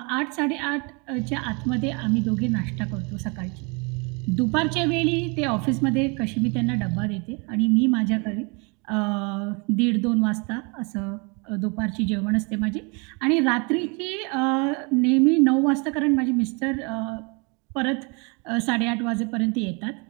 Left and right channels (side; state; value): left; quieter; 31.9 dB